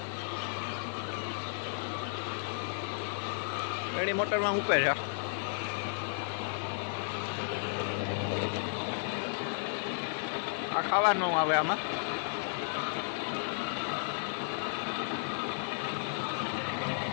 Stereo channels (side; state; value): right; silent; digital silence